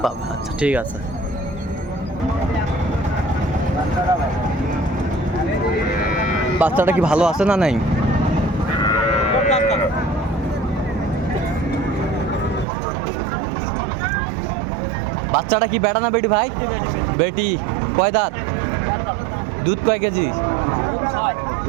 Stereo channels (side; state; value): left; drops out; at 12.7 s